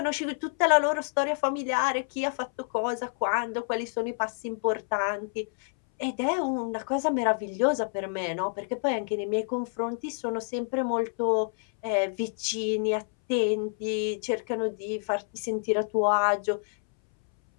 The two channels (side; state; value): right; silent; 59 dB below the other